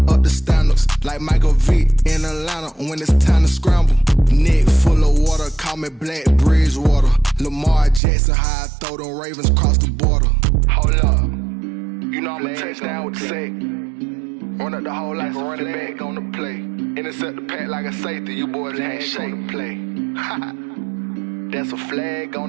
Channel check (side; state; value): left; drops out; at 8.0 s